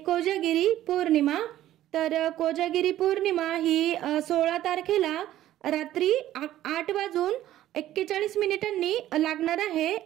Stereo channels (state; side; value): quieter; left; 13.4 dB